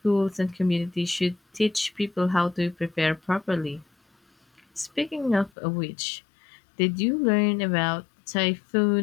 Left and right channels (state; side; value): drops out; right; at 5.5 s